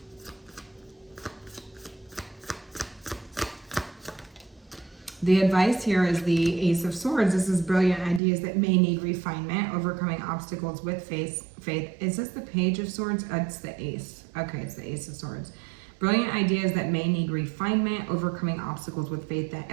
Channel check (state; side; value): drops out; left; at 8.2 s